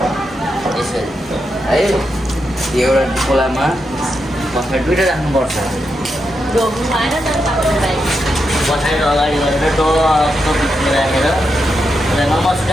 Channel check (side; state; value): both; normal; correlation 0.85